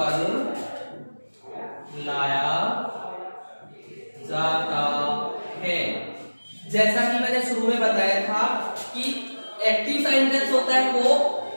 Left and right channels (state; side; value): inverted; both; correlation -1.00